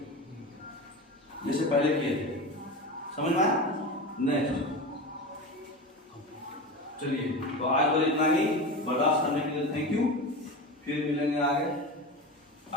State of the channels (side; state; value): both; normal; correlation 0.26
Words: जैसे पहले किए थे। समझ में आया? नेक्स्ट चलिए, तो आज तो इतना ही, बर्दाश्त करने के लिए थैंक यू। फिर मिलेंगे